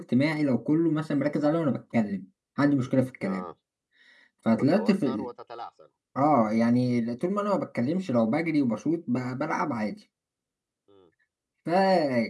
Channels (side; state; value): both; identical; correlation 1.00